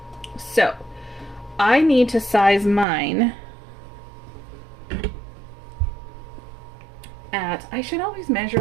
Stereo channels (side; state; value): left; drops out; at 2.9 s